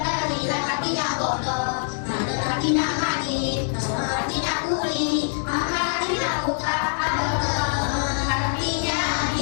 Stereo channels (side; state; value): right; silent; digital silence